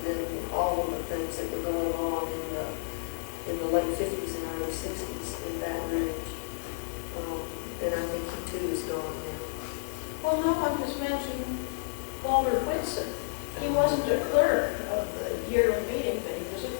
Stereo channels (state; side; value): silent; right; 57 dB below the other